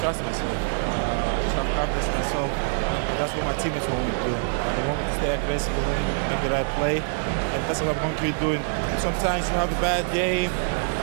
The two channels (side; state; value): left; silent; digital silence